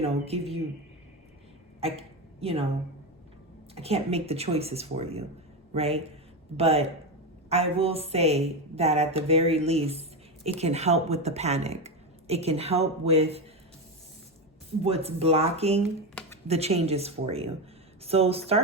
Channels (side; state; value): both; normal; correlation 0.15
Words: give you, I can't make the choices for you, right? But I will say that at the very least, it can help with the panic. It can help with what's blocking the changes for you. So